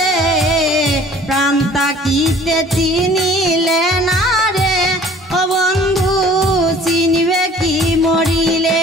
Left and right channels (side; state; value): both; normal; correlation 0.51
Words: প্রাণ তাকিতে চিনিলে না রে ও বন্ধু চিনিবে কি মরিলে